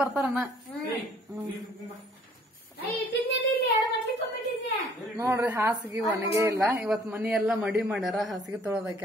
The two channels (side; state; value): both; normal; correlation 0.58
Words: ಬರ್ತಾರಣ್ಣ. ನೋಡ್ರಿ ಹಾಸಿಗೆ ಒಣಗೆ ಇಲ್ಲ. ಇವತ್ ಮನಿ ಎಲ್ಲಾ ಮಡಿ ಮಾಡ್ಯಾರ. ಹಾಸಿಗೆ